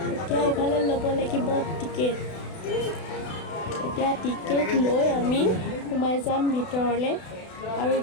এতিয়া এইফালে ল'ব লাগিব টিকেট। এতিয়া টিকেট লৈ আমি সোমাই যাম ভিতৰলৈ, আৰু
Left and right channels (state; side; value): late; right; 32 ms